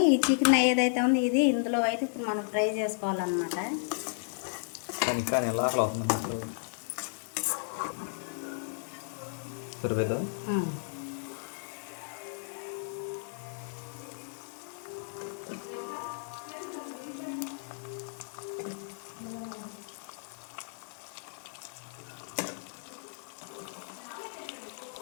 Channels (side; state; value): right; silent; 55 dB below the other